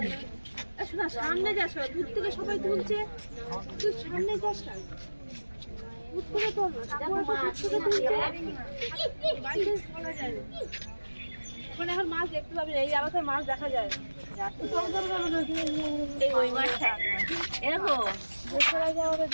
শোনা সামনে যাস দূর থেকে সবাই তুলছে তুই সামনে যাস না দূর থেকে তোল ওখানে এখন মাছ দেখতে পাবি এই আলাদা মাছ দেখা যায় ওই মাছটা এরকম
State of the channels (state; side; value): inverted; both; correlation -1.00